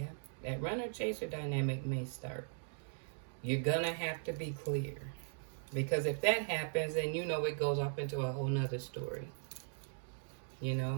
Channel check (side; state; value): left; silent; digital silence